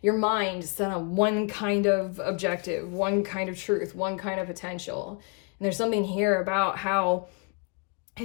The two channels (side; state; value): right; quieter; 32.3 dB